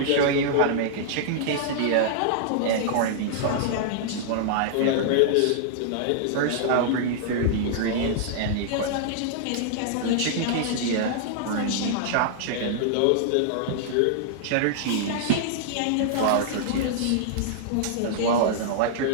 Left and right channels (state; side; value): different; both; correlation -0.01